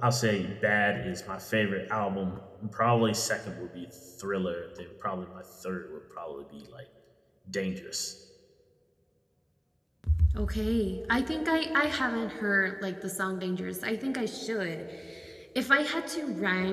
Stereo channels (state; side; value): identical; both; correlation 1.00